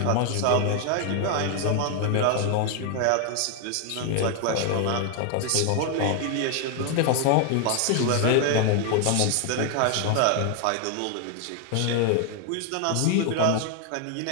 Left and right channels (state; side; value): different; both; correlation 0.00